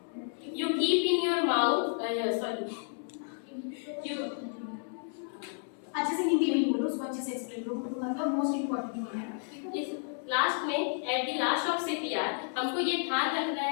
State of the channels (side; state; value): right; silent; 57 dB below the other